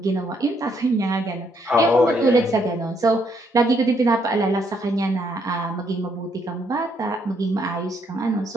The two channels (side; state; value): both; normal; correlation 0.72